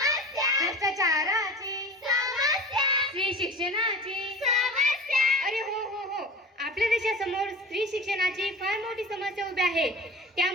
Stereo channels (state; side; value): normal; both; correlation 0.36